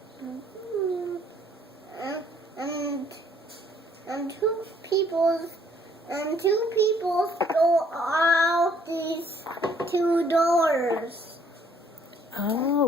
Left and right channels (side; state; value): both; normal; correlation 0.63